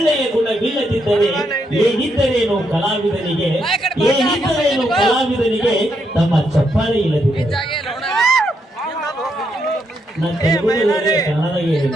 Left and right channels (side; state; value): both; normal; correlation 0.78